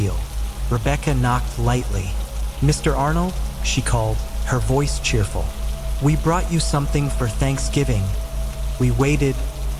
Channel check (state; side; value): identical; both; correlation 1.00